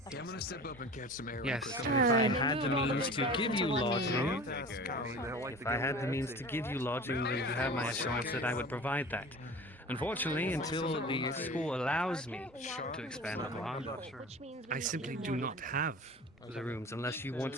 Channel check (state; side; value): normal; both; correlation 0.38